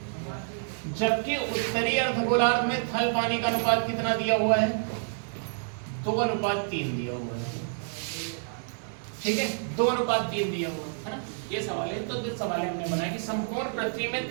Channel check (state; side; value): silent; left; digital silence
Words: जबकि उत्तरी अर्धगोलार्ध में थल पानी का अनुपात कितना दिया हुआ है, 2:3 दिया हुआ है। ठीक है, 2:3 दिया हुआ है ना। ये सवाल है, तो जो सवाल हमने बनाया कि संपूर्ण पृथ्वी में